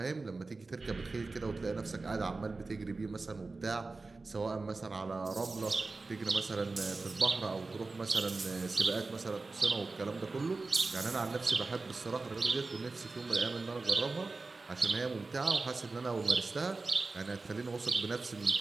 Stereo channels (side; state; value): left; quieter; 3.7 dB